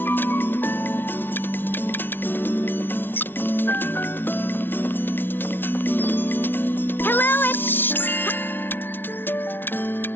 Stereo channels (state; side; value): late; right; 0.10 ms